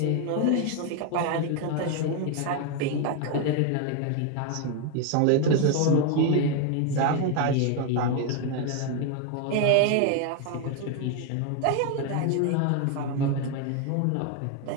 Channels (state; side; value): different; both; correlation 0.01